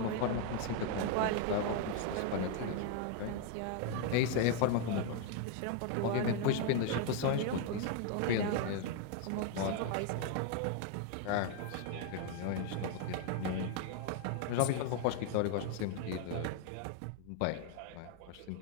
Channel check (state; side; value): different; both; correlation 0.01